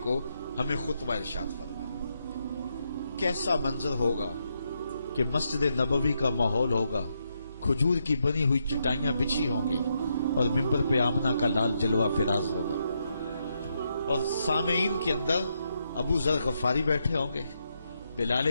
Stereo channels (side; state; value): both; inverted; correlation -0.81